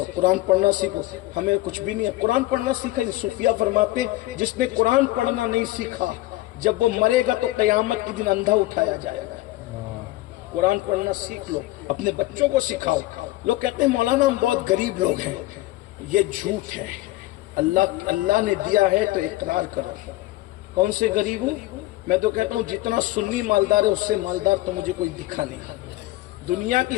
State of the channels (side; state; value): right; quieter; 17.8 dB